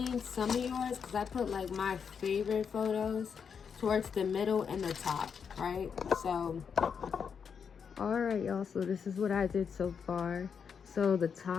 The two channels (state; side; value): quieter; right; 6.6 dB